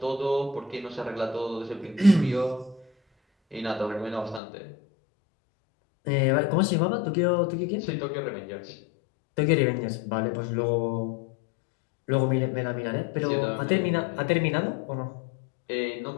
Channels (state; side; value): drops out; right; at 4.4 s